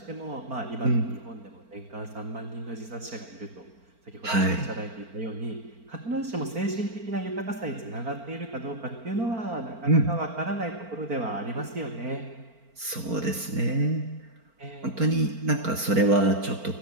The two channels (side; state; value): left; late; 4.4 ms